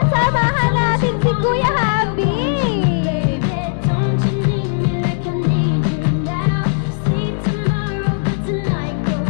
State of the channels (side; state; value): right; silent; digital silence